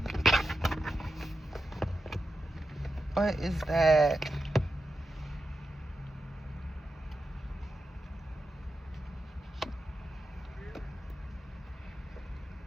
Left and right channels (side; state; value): both; normal; correlation 0.89